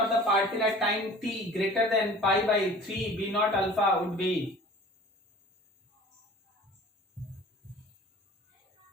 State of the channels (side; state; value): both; normal; correlation 0.45